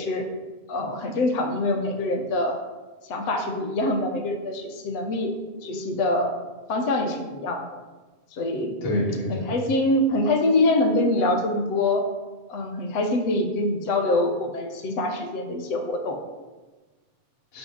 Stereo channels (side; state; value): right; late; 7.9 ms